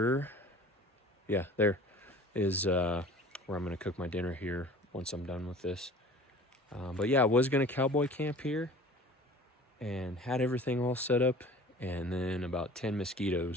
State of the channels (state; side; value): normal; both; correlation 0.44